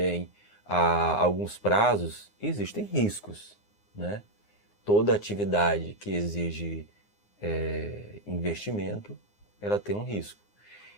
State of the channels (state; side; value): late; right; 9.7 ms